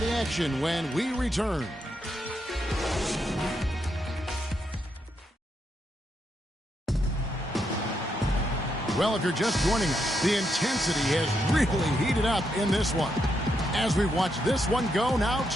the action when we return. Well, if you're just joining us, the intensity has really heated up in this one. As we watch this one go now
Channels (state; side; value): normal; both; correlation 0.80